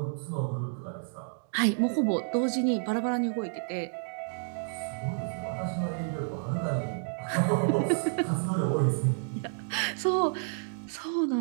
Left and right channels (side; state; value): left; silent; digital silence